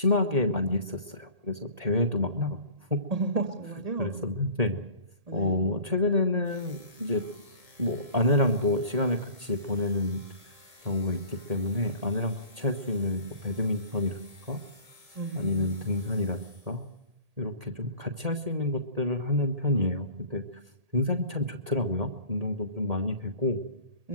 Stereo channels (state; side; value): late; left; 1.8 ms